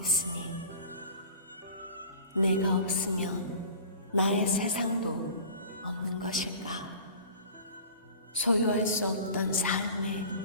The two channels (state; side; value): inverted; both; correlation -0.40